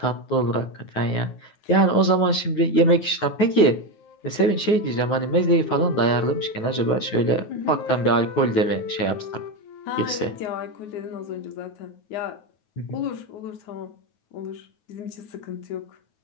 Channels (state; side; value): late; right; 9.4 ms